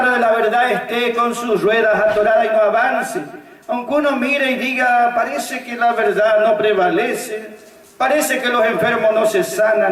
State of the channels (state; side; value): identical; both; correlation 1.00